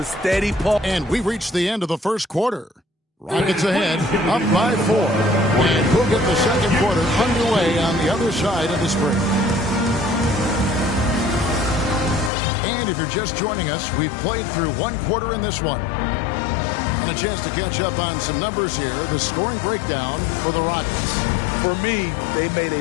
steady pull. And we reached the end of the first quarter. Rockets ahead, up by 4. And we'll get the second quarter underway on the other side of the spring. And if you're just joining us, we've played through one quarter in this one. And a chance to catch up on some numbers here. The scoring breakdown for the Rockets. For me, they made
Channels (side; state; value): right; drops out; at 12.3 s